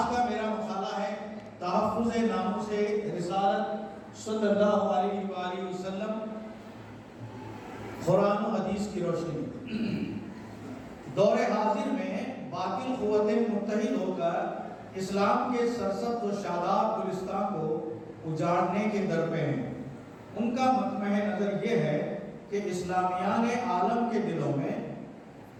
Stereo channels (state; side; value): identical; both; correlation 1.00